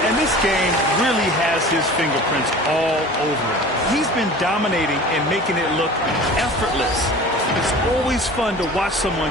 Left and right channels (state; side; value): normal; both; correlation 0.40